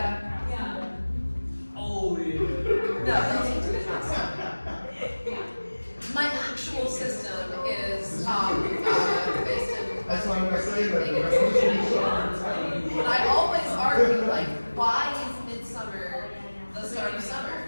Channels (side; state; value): both; inverted; correlation -1.00